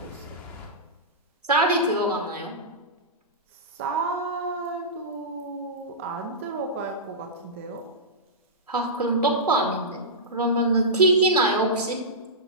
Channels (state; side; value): normal; both; correlation -0.15